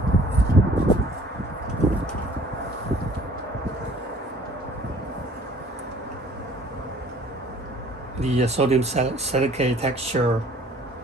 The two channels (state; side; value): normal; both; correlation 0.54